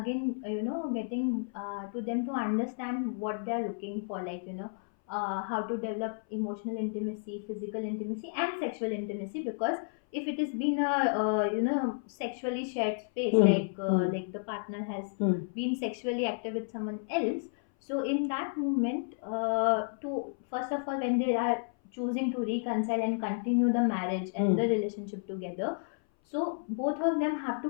getting to them to understand what they are looking for, like how to develop emotional intimacy, physical intimacy, and sexual intimacy. Because if it has been a sexually shared space, like the partner has been sexually active with someone else, so in that moment, to first of all, when they are choosing to reconcile and continue the marriage and the relationship together, so both of them have to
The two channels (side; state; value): right; silent; 57 dB below the other